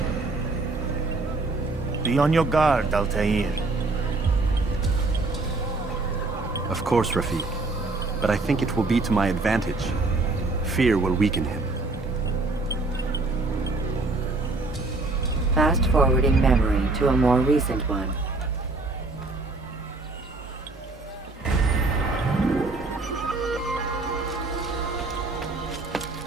Be on your guard, Altaïr. Of course, Rafiq. But I think it will be to my advantage. Fear will weaken him. Fast-forwarding memory to a more recent one.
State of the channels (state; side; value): quieter; left; 3.3 dB